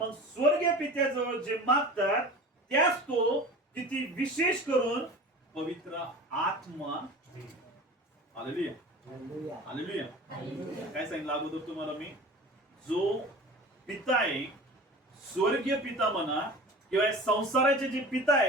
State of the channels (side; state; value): both; normal; correlation 0.37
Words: स्वर्गीय पित्याजवळ जे मागतात त्यास तो किती विशेष करून पवित्र आत्मा देईल. Hallelujah, hallelujah. काय सांगितलं अगोदर तुम्हाला मी? जो पिता आहे, स्वर्गीय पिता म्हणा किंवा संसाराचे जे पिता